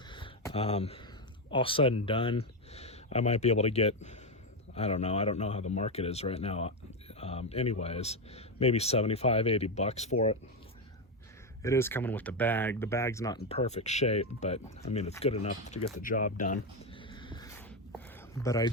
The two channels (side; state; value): both; normal; correlation 0.09